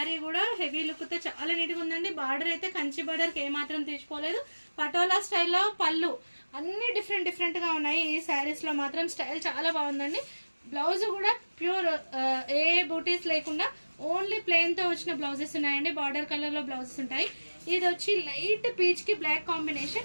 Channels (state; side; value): inverted; both; correlation -1.00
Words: కూడా హెవీ లుక్తో చాలా నీట్గా ఉందండి. బార్డర్ అయితే కంచి బార్డర్కి ఏమాత్రం తీసుకోలేదు. పటోలా స్టైల్లో పళ్ళు అన్నీ డిఫరెంట్గా ఉన్నాయి. ఈ శారీస్లో మాత్రం స్టైల్ చాలా బాగుందండి. బ్లౌజ్ కూడా ప్యూర్ ఏ బూటీస్ లేకుండా ఓన్లీ ప్లెయిన్తో వచ్చిన బ్లౌజెస్ ఉన్నాయండి. బార్డర్ కలర్లో బ్లౌజెస్ ఉంటాయి. ఇది వచ్చి లైట్ పీచ్కి బ్లాక్